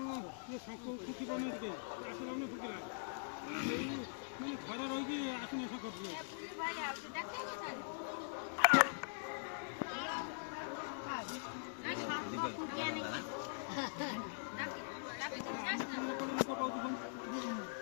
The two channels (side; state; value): right; silent; digital silence